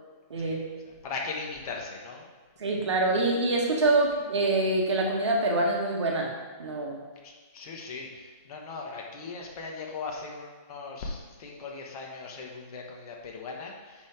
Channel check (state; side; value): inverted; both; correlation -0.35